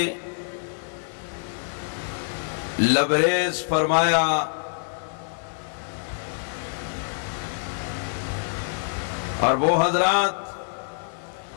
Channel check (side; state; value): right; silent; 58 dB below the other